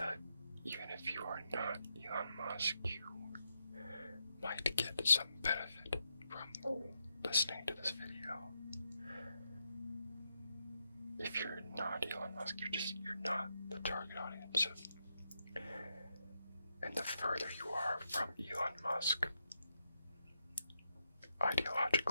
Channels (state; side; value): inverted; both; correlation -0.82